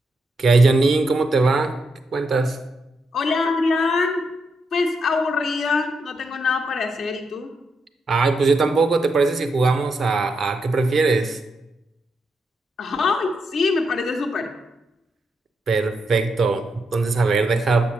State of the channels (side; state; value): both; normal; correlation 0.82